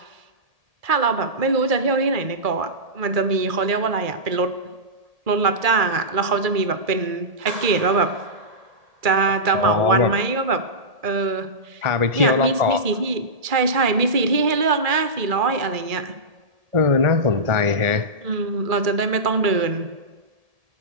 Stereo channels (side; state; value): left; late; 1.7 ms